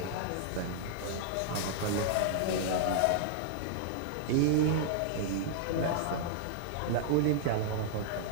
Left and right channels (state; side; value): different; both; correlation -0.01